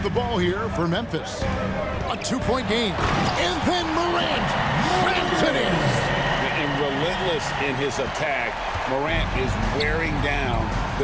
the ball here for Memphis. A two-point game. And then Morant rams it in. And relentless in his attack, Morant is wearing down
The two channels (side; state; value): both; identical; correlation 1.00